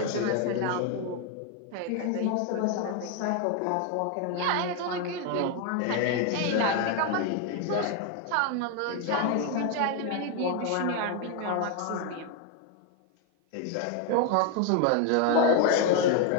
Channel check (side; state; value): both; different; correlation 0.01